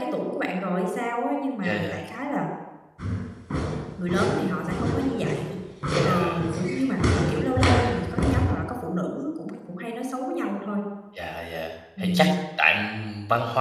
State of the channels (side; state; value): both; identical; correlation 1.00